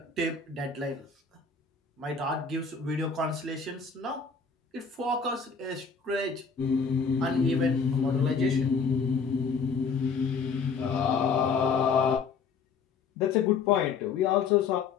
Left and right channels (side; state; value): right; quieter; 5.3 dB